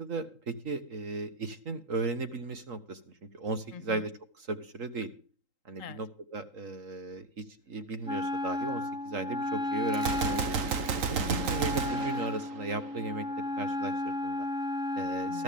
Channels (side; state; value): left; late; 3.8 ms